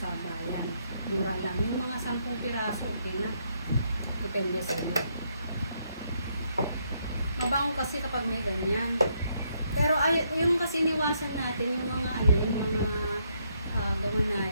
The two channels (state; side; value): inverted; both; correlation -0.75